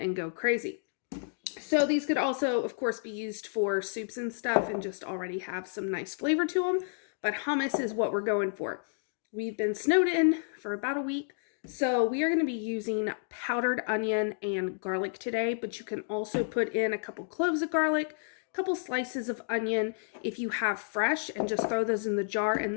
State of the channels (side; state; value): right; silent; digital silence